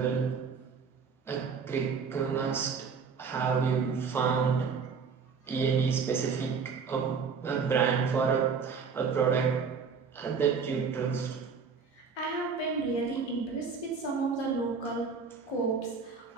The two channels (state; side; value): quieter; left; 5.6 dB